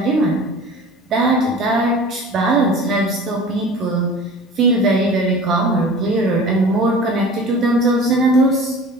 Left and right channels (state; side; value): normal; both; correlation 0.41